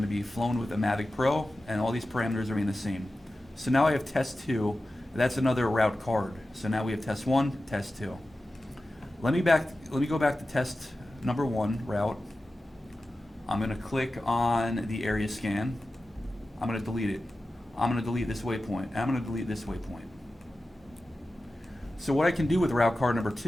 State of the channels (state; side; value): normal; both; correlation 0.94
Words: to be flown with a Mavic Pro, and all these parameters are the same. So now I have test 2. That's another route card. So now we have test 1, test 2. Let me go back to test number 1 route. I'm going to click on the area scan. I'm going to delete it. I'm going to delete this waypoint. I'm going to delete this waypoint. So what I can do with route card number